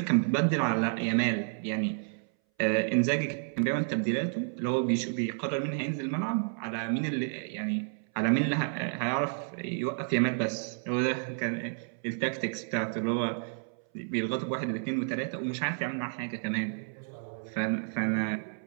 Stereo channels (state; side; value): silent; left; 57 dB below the other